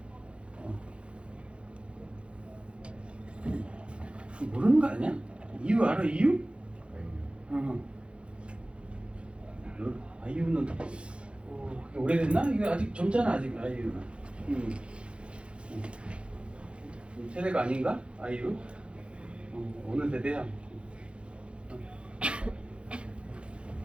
모르는 거 아니야? 이유 알아? 이유? 아이유는 그게 오래됐나? 이거 아직 젊잖아 아직 아이유는. 세대가 아닌가? 아이유? 어느 세대야?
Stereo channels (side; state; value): left; late; 0.058 ms